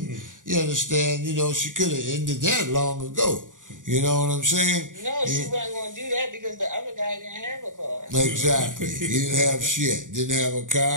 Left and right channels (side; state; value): left; late; 0.88 ms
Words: you understand, she could have ended that long ago. You know what I'm saying? No, she wasn't going to do that because the other guy didn't have a car. Exactly. He didn't have shit. Didn't have a